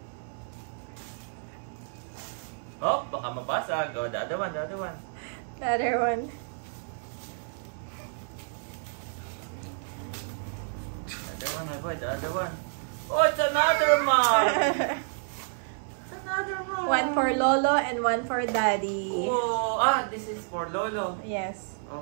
Oh, baka mabasag. Oh, the other one, the other one. The other one. The other one, my boy, the other one. Oh, it's another mug! It's another mug! One for Lolo and one for Daddy. Oh, this is for Lolo. Yes.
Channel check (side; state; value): left; silent; 58 dB below the other